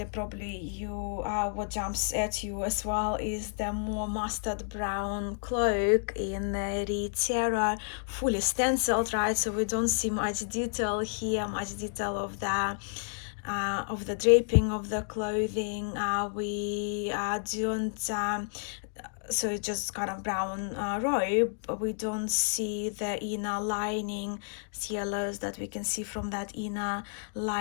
probably what jumps at you as well is the more mustard brown cloak in the Terror, fully stenciled, right? So we don't see much detail here, much detail of the draping of the clothing. We don't. So it's just kind of brown robe, but we don't see the inner lining, yellows that we can see from that inner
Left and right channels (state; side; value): silent; right; digital silence